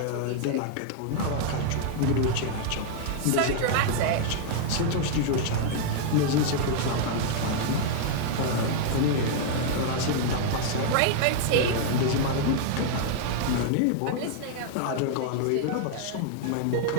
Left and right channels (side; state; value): both; different; correlation 0.00